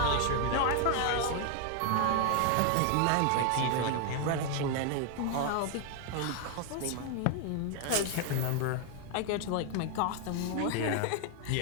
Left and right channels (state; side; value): different; both; correlation 0.01